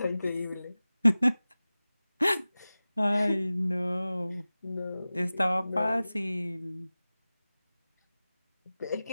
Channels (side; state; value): both; inverted; correlation -0.97